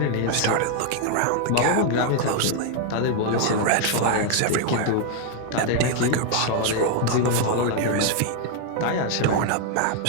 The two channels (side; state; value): both; different; correlation 0.00